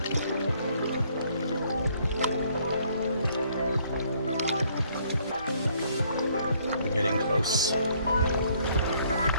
We're getting close.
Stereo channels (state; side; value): inverted; both; correlation -0.65